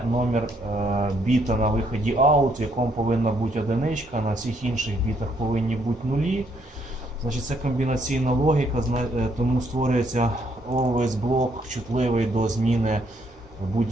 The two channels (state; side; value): normal; both; correlation 0.70